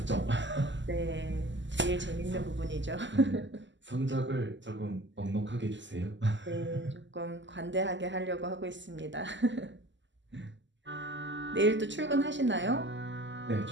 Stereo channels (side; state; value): left; late; 0.54 ms